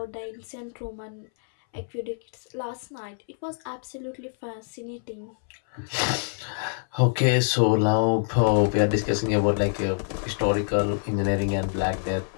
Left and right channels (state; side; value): silent; right; 61 dB below the other